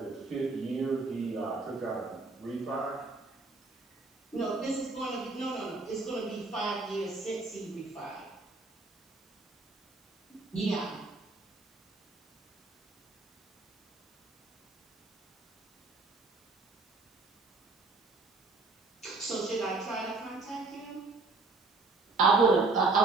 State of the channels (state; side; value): quieter; left; 3.6 dB